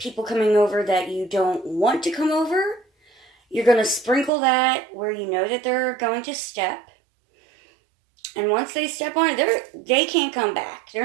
coming over that you don't want to come over. You're going to sprinkle that where you know that they're going to step. And once they step on it, they can't come back. They're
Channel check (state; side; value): drops out; left; at 4.3 s